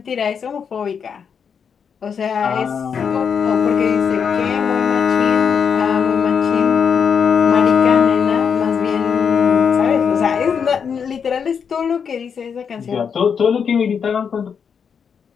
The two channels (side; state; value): right; quieter; 6.8 dB